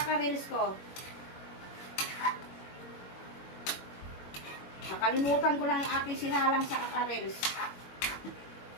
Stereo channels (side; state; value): right; late; 21 ms